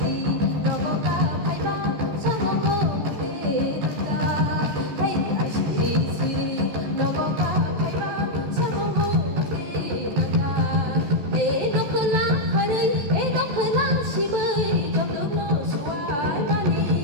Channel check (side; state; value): left; late; 14 ms